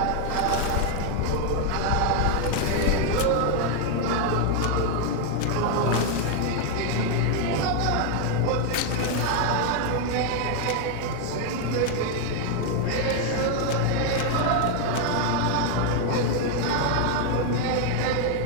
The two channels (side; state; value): both; different; correlation 0.01